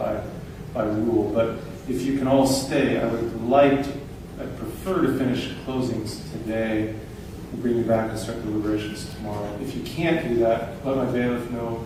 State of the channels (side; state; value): both; identical; correlation 1.00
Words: by rule, but if you can all stay, I'd prefer to finish closings today and bring you back and start deliberations tomorrow. If you can't do that, let my bailiff know.